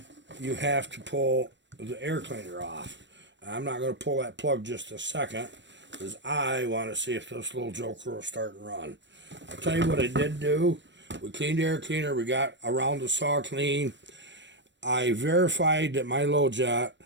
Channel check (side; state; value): left; late; 0.53 ms